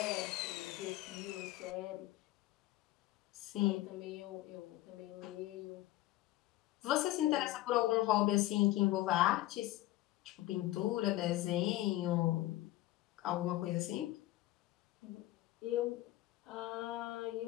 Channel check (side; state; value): right; quieter; 16.5 dB